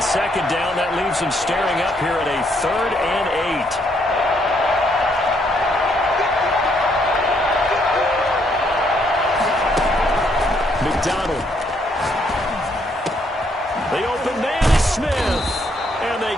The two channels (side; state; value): both; normal; correlation 0.71